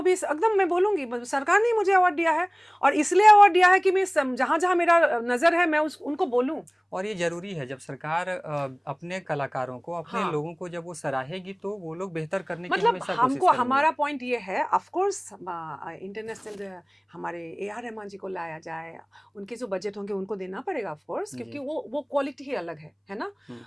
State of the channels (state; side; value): identical; both; correlation 1.00